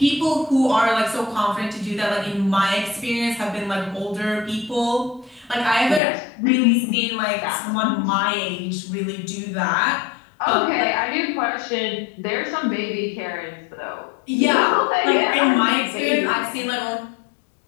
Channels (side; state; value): right; drops out; at 6.0 s